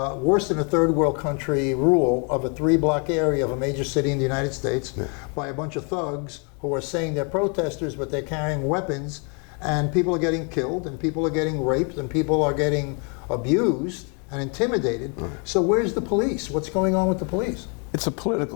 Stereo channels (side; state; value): right; quieter; 35.6 dB